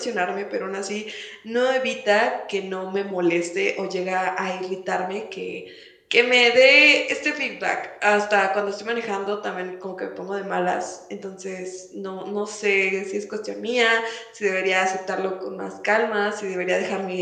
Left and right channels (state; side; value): identical; both; correlation 1.00